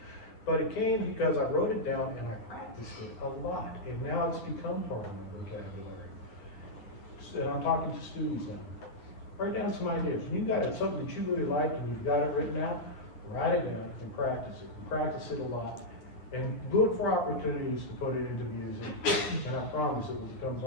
But it came because I wrote it down and I practiced it a lot, and now it's become part of my vocabulary. So I'm talking to students now. Write down some ideas. When you got it, something that you really like and you've got it written out, write it down and practice it. Practice it a lot. And look for opportunities to put it into music, and I promise it will become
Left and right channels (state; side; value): late; right; 9.5 ms